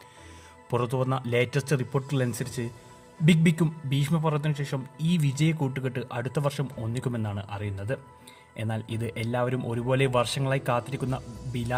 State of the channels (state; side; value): identical; both; correlation 1.00